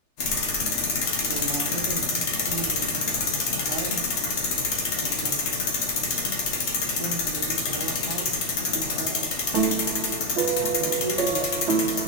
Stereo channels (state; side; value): late; right; 3.4 ms